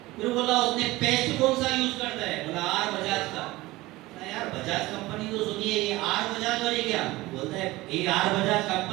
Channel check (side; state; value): left; quieter; 19.3 dB